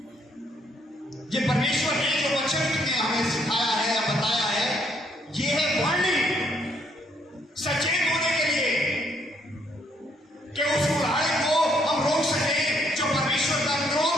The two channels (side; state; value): both; normal; correlation 0.69